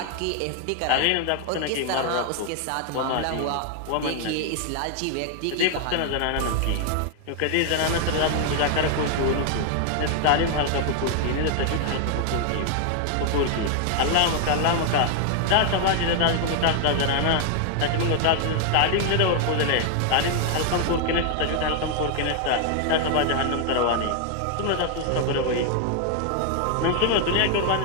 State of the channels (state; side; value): different; both; correlation 0.00